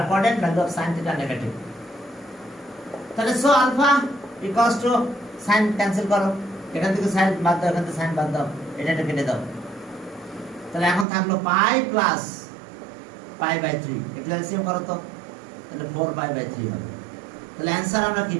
coordinate value of sine theta negative. তাহলে so alpha equals to sine cancel করো, এখান থেকে সাইন বাদ দাও, এখান থেকে সাইন বাদ দাও, এটা কেটে দাও। তাহলে এখন থাকলো পাই প্লাস পাই বাই 3, এটা এলসিএম করো তো, তাহলে 4 পাই বাই 3 হবে। তাহলে অ্যান্সার আমরা কি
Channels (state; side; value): drops out; left; at 11.1 s